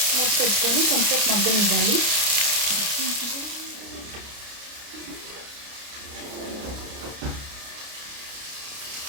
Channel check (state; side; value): late; left; 29 ms